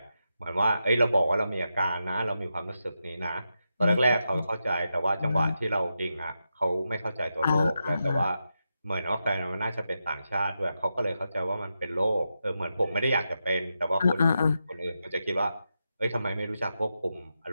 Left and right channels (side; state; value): both; inverted; correlation -0.87